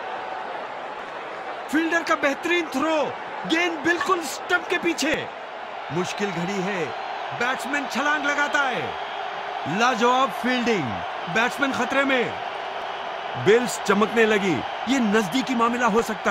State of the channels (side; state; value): both; identical; correlation 1.00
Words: फील्डर का बेहतरीन थ्रो। गेंद बिल्कुल स्टंप के पीछे। मुश्किल घड़ी है। बैट्समैन छलांग लगाता है। लाजवाब फील्डिंग। बैट्समैन खतरे में। बेल्स चमकने लगी। ये नजदीकी मामला हो